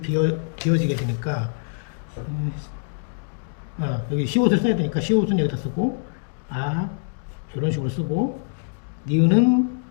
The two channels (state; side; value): silent; right; digital silence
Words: 비어지게 되니까, 여기 시옷을 써야 되니까 시옷은 여기다 쓰고, 이런 식으로 쓰고, 니은은